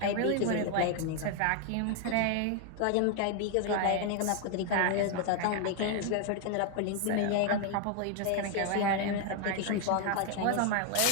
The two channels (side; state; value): both; different; correlation 0.00